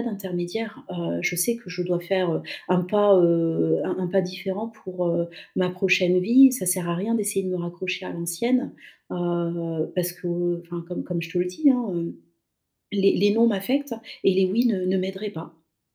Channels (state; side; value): identical; both; correlation 1.00